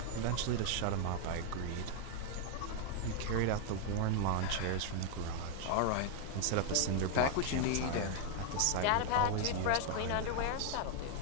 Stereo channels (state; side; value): different; both; correlation 0.00